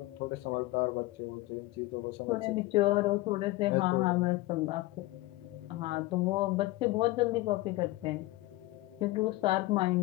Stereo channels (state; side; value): quieter; right; 19.2 dB